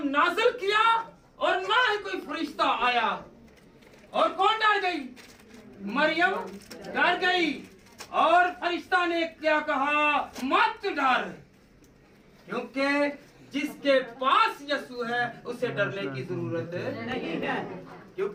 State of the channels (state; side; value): identical; both; correlation 1.00